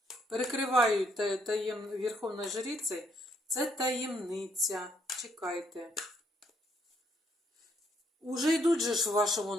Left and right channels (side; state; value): both; normal; correlation 0.71